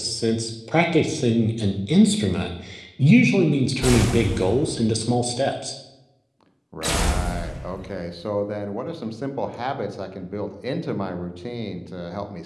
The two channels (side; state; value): both; identical; correlation 1.00